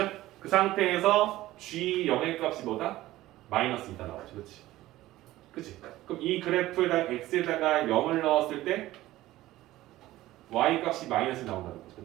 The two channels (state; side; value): quieter; left; 16.2 dB